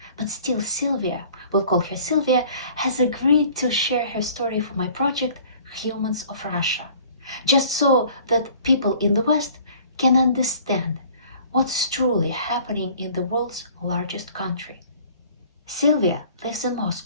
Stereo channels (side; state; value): both; inverted; correlation -0.51